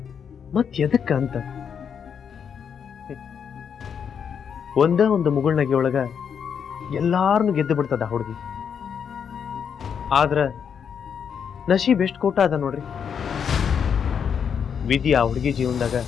ಮತ್ ಎದಕ್ಕ ಅಂತ ಒಂದು ಮುಗುಳ್ನಗೆ ಒಳಗ ಎಲ್ಲಾರನ್ನು ಗೆದ್ದು ಬಿಡ್ತದ ಆ ಹುಡುಗಿ. ಆದ್ರ ನಶೀಬ್ ಎಷ್ಟು ಕೋಟ ಅದ ನೋಡ್ರಿ. ವಿಧಿ ಆ ಹುಡುಗಿ ಜೀವನದಾಗ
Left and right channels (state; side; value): quieter; right; 7.3 dB